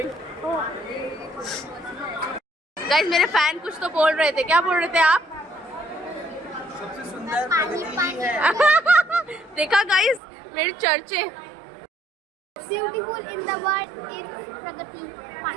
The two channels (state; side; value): drops out; left; at 10.2 s